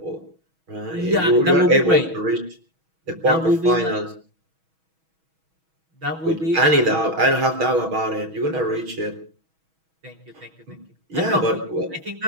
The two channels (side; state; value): left; late; 6.2 ms